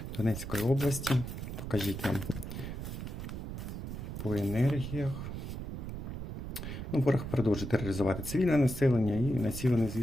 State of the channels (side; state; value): right; noise; rumble, 6 dB below the sound